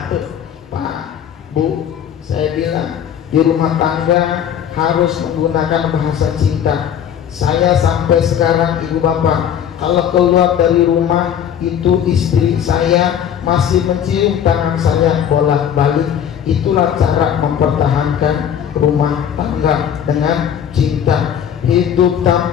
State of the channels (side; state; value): right; quieter; 9.1 dB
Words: Pak, Bu, saya bilang di rumah tangga harus menggunakan bahasa cinta. Saya sampai sekarang ibu bapak, kalau keluar dari rumah itu istri saya masih mencium tangan saya bolak-balik. Itulah cara mempertahankan rumah tangga dengan cinta. Hidup